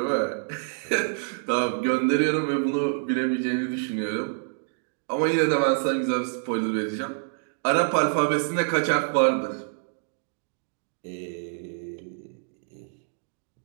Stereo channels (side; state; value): left; silent; digital silence